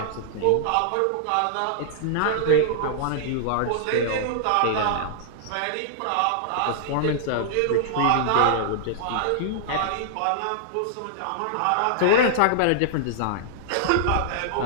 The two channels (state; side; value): different; both; correlation -0.01